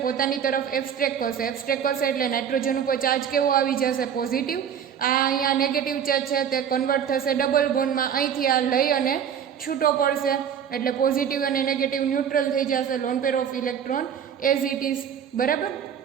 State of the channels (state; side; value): quieter; left; 8.3 dB